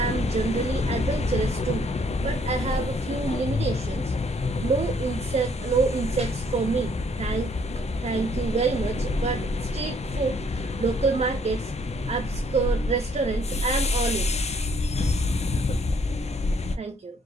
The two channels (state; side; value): normal; both; correlation 0.65